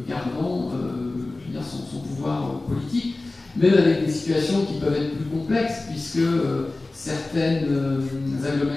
gardant son pouvoir politique, même avec des situations qui peuvent être plus complexes, puisque certaines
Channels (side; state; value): right; quieter; 3.1 dB